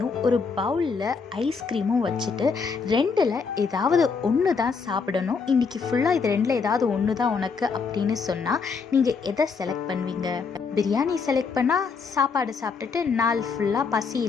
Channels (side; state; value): right; quieter; 5.2 dB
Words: ஒரு பவுலில் ஐஸ்கிரீமும் வச்சுட்டு ரெண்டில் ஏதாவது ஒன்று தான் சாப்பிடணும், இன்றைக்கி ஃபுல்லாக இது ரெண்டில் ஏதாவது ஒன்று தான் உனக்கு அப்படின்னு சொன்னால் நீங்கள் எதை செலக்ட் பண்ணுவீங்க? பிரியாணி செலக்ட் பண்ணால் சாப்பாடு சாப்பிட்டுட்டு நாள் ஃபுல்லாக பசி